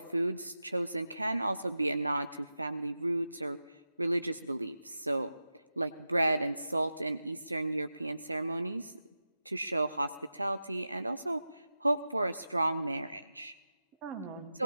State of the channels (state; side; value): inverted; both; correlation -0.93